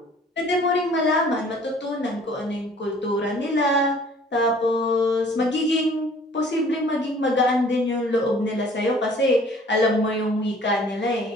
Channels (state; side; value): normal; both; correlation 0.53